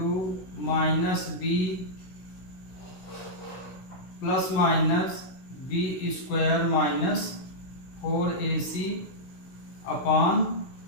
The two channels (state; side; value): late; right; 16 ms